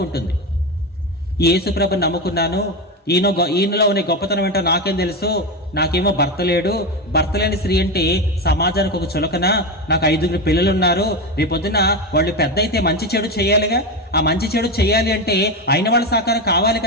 యేసు ప్రభుని నమ్ముకున్నాను, ఈయనలో ఉన్న గొప్పతనం ఏంటో నాకేం తెలుసు, నాకేమో భర్త లేడు, భర్త లేని స్త్రీ అంటే సమాజానికి ఒక చులకన, నాకు 5 పిల్లలు ఉన్నారు, రేపొద్దున వాళ్ళు పెద్ద అయితే మంచి చెడు చేయాలిగా, ఆ మంచి చెడు చేయాలి అంటే అయిన వాళ్ళ సహకారం కావాలి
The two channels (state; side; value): normal; both; correlation 0.16